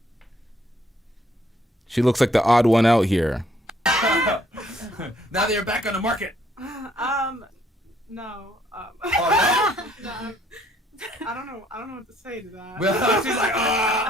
She looks like the odd one out here. Now they're back on the market. no. Oh, No, I don't know what to say to that. well, she's like,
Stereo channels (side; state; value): both; normal; correlation 0.66